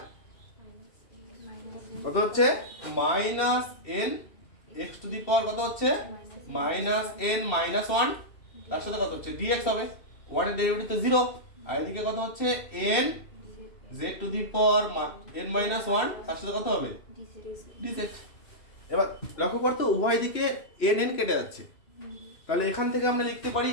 কত হচ্ছে -n x⁴ কত হচ্ছে -n - 1, তার সাথে কত হচ্ছে dx হবে, 1 এর ডেরিভেটিভ তো 0, আর এদিকে কত হচ্ছে n z⁴n - 1, তার সাথে কত হবে dz। এবার লক্ষ্য করতে উভয় দিকে n কেটে যাচ্ছে, তাহলে এখান থেকে আমরা লিখতে পারি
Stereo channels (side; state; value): right; late; 2.7 ms